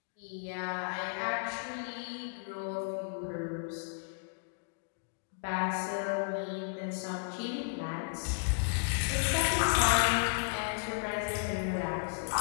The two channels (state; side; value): silent; right; digital silence